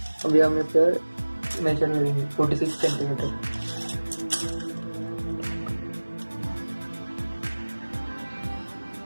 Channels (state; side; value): inverted; both; correlation -1.00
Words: अभी हम फिर मेजर लेंगे 46 सेंटीमीटर।